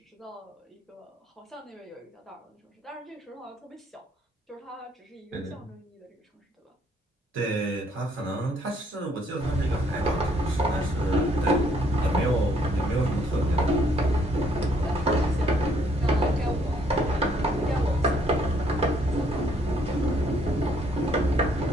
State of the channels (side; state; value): both; normal; correlation 0.67